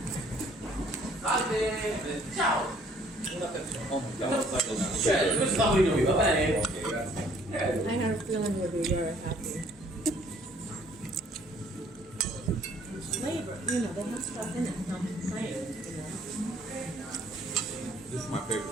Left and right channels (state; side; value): normal; both; correlation 0.60